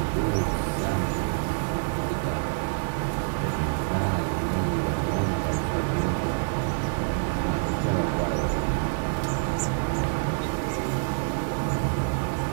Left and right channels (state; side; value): silent; left; digital silence